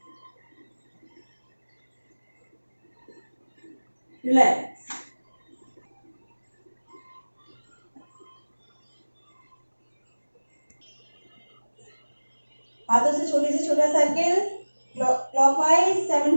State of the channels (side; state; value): both; inverted; correlation -1.00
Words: Relax. हाथों से छोटा सर्किल क्लॉकवाइज 7